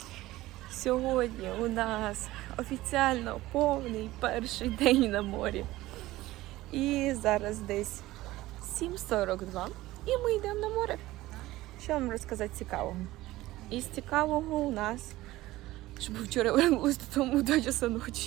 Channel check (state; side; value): quieter; left; 17.3 dB